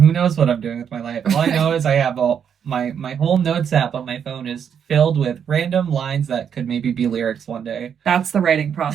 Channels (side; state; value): left; quieter; 7.9 dB